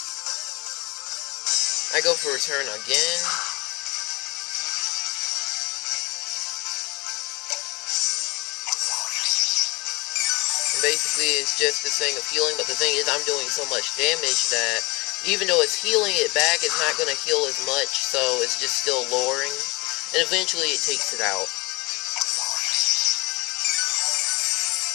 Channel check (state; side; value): quieter; right; 25.0 dB